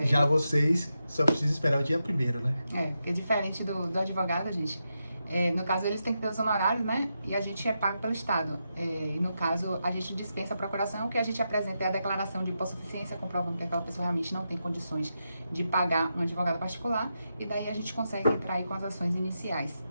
Já vocês só precisam esperar o dia primeiro, né? Porque diferente do advogado, gente, no caso eles têm que ter os honorários, né? E a gente é pago pelo Estado. E no caso, a gente dispensa a procuração, o que a gente apresenta é a declaração de hipossuficiência, comprovando que aquela pessoa realmente não tem condições de pagar um advogado particular, e daí a gente consegue entrar aí com as ações iniciais,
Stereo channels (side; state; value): both; inverted; correlation -0.86